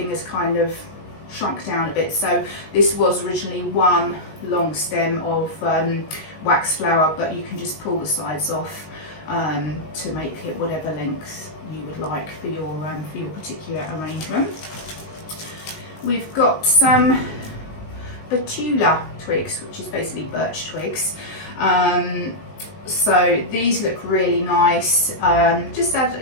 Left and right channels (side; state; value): right; late; 19 ms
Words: is kind of shrunk down a bit. So this was originally one long stem of wax flower, but you can just pull the sides off to make it whatever length you would like for your particular arrangement. We've got some betula twigs, which is basically birch twigs. So these look really nice. Just add